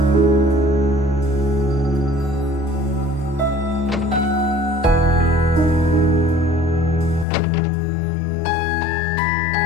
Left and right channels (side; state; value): right; drops out; at 7.2 s